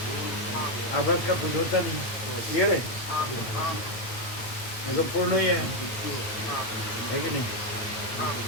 आभास का कुछ होता नहीं। क्लियर है? ये तो पूर्ण ही है कि नहीं?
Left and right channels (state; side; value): late; right; 8.8 ms